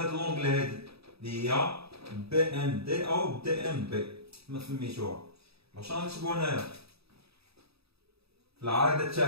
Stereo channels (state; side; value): late; left; 0.77 ms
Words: لونغل هادي اللي هي BMD أو DMB كما سميتوها. واش غنكتبو هنايا في العارضة